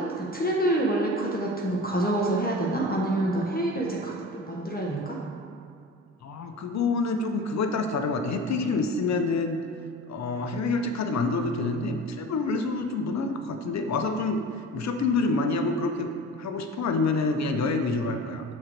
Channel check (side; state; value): both; normal; correlation 0.36